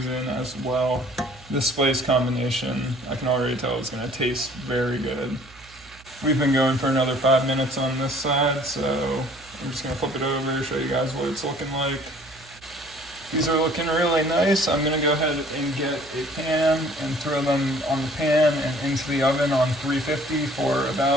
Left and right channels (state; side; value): noise; right; hum, 24 dB below the sound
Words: as well. This spice combination, I can already tell it's gonna taste very good. We've been going for another 5 minutes on this side, so I'm just gonna flip it over, show you guys what it's looking like. These are looking really nice. I'm gonna go ahead and get a pan and throw them on the pan and into the oven on 350 for